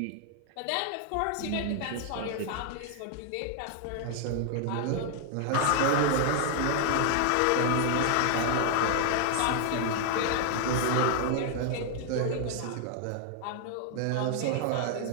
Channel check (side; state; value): both; different; correlation 0.00